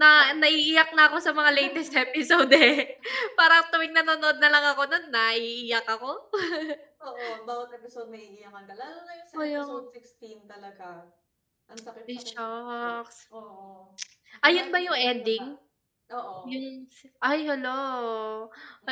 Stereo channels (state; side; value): identical; both; correlation 1.00